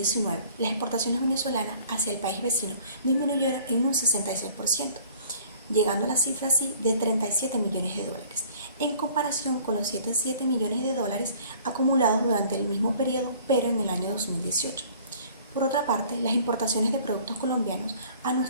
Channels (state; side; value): inverted; both; correlation -0.52